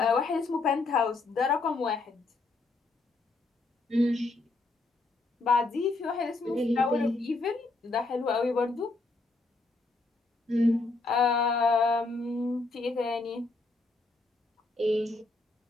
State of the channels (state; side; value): quieter; right; 3.4 dB